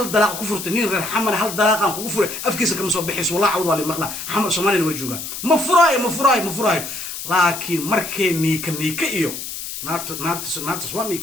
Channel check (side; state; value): left; noise; hiss, 8 dB below the sound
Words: دلاق كفر تنين غير حمل هل دلاق كفر أفكيس كم صوب بحس والله عوض على مقلا حمل سمانين وجوجا مفراي لكن مركا نيك إيو ناقت سواني